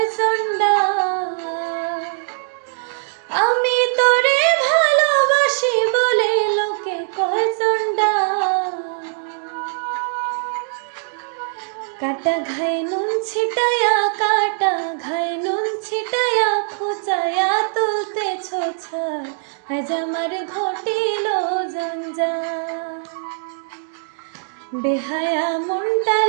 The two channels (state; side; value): silent; left; digital silence